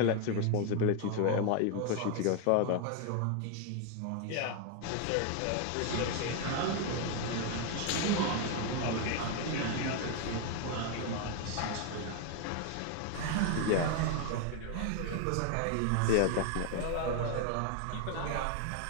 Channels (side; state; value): both; different; correlation 0.01